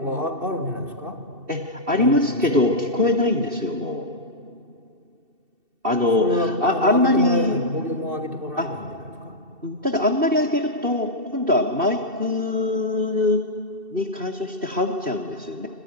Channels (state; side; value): late; left; 2.7 ms